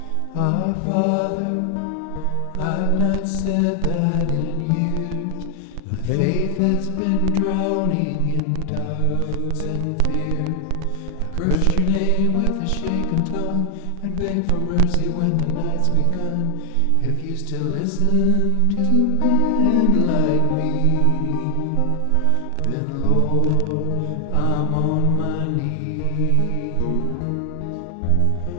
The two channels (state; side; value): different; both; correlation 0.00